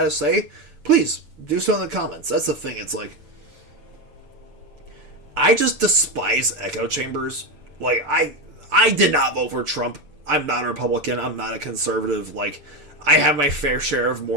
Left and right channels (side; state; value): left; late; 6.9 ms